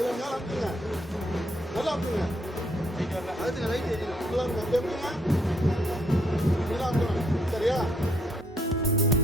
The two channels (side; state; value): both; normal; correlation 0.71